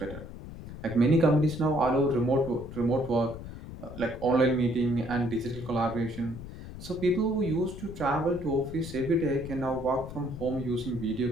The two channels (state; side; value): noise; left; rumble, 12 dB below the sound